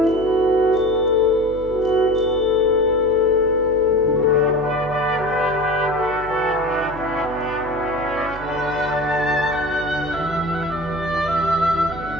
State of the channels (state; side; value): noise; right; hum, 14 dB below the sound